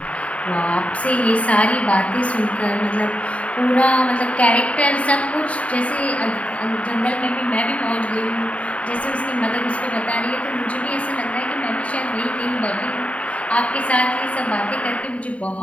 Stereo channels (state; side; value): late; right; 0.066 ms